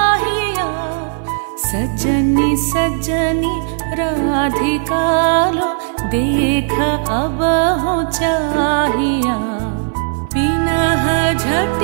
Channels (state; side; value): silent; left; 58 dB below the other